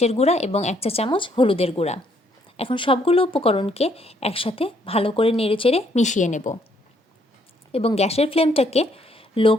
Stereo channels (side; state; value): both; normal; correlation 0.69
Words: গুঁড়া এবং 1 চা চামচ হলুদের গুঁড়া। এখন সবগুলো উপকরণকে একসাথে ভালো করে নেড়েচেড়ে মিশিয়ে নেব এবং গ্যাসের ফ্লেমটাকে লো